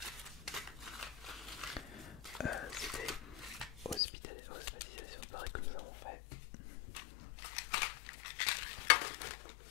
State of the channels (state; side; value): drops out; right; at 4.0 s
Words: C'était hospitalisation pareil que nous avons fait.